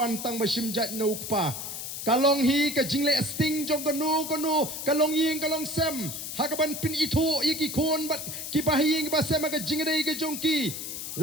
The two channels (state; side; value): noise; left; hiss, 7 dB below the sound